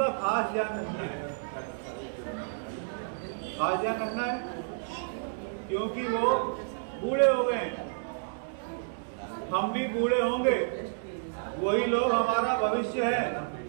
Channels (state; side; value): silent; left; digital silence